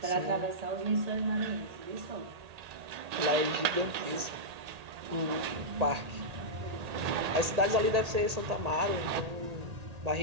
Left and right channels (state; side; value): late; left; 1.8 ms